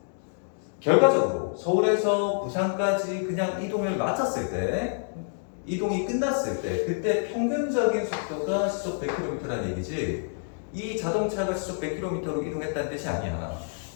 결과적으로 서울에서 부산까지 그냥 이동을 마쳤을 때, 이동이 끝났을 때, 그때 평균적인 속도가 시속 100km라는 얘기지, 이 자동차가 시속 100km로 이동했다는 뜻이 아니야.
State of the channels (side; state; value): right; silent; digital silence